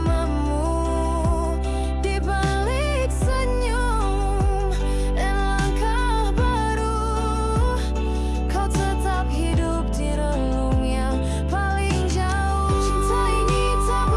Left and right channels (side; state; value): both; identical; correlation 1.00